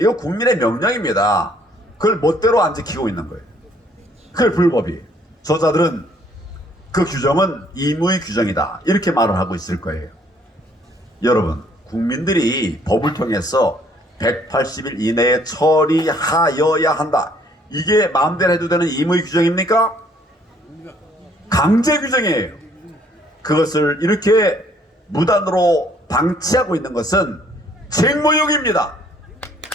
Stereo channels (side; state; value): both; normal; correlation 0.63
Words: 이거 국민의 명령입니다. 그걸 멋대로 안 지키고 있는 거예요. 그게 불법이에요. 저자들은 그 규정은 임의 규정이다, 이렇게 말을 하고 있을 거예요. 여러분, 국민들이 법을 통해서 180일 이내에 처리하여야 한다, 이게 마음대로 해도 되는 임의 규정입니까? 강제 규정이에요. 그것을 이렇게 무단으로 방치하고 있는 것은 책무유기입니다.